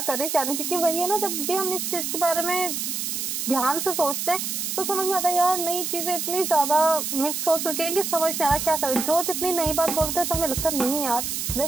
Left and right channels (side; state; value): right; noise; hiss, 3 dB below the sound